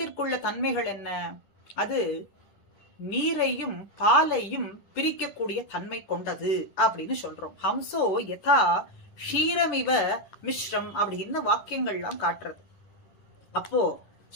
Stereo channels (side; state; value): right; late; 10 ms